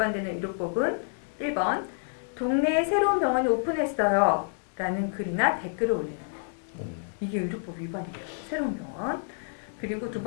의료법은 1번 동네에 새로운 병원이 오픈했어요 라는 글이나 댓글을 올리는 거예요. 이게 의료법 위반이에요. 새로운 병원. 그리고 두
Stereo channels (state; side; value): silent; right; digital silence